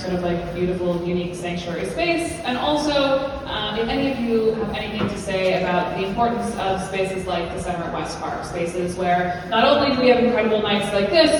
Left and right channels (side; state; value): both; identical; correlation 1.00